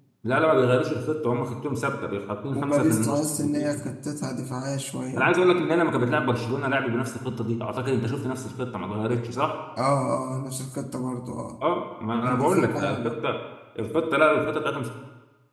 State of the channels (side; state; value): both; identical; correlation 1.00